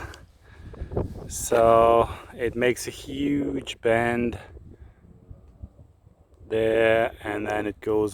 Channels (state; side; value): identical; both; correlation 1.00